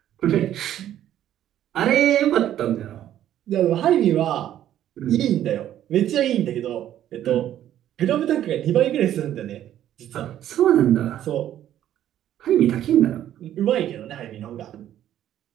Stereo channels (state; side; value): quieter; left; 11.6 dB